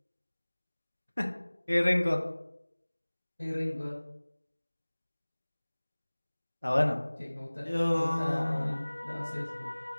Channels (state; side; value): inverted; both; correlation -1.00